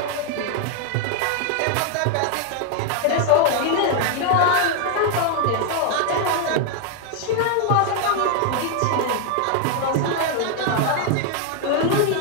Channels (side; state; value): both; different; correlation 0.00